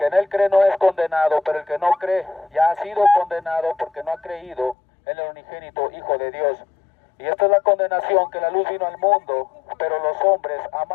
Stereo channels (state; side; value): drops out; right; at 4.8 s